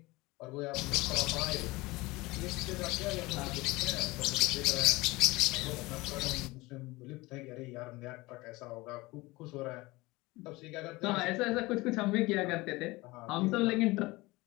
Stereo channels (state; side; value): quieter; right; 21.6 dB